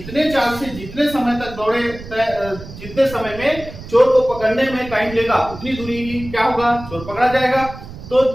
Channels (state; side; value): noise; right; rumble, 14 dB below the sound